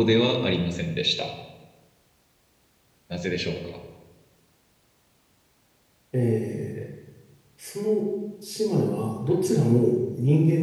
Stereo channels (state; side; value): identical; both; correlation 1.00